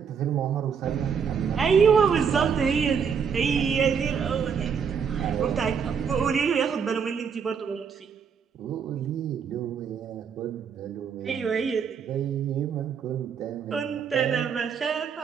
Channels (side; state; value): left; quieter; 6.7 dB